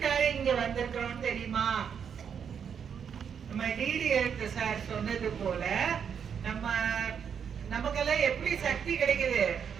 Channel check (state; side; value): quieter; left; 7.4 dB